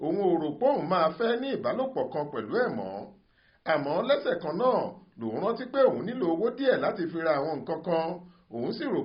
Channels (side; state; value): both; identical; correlation 1.00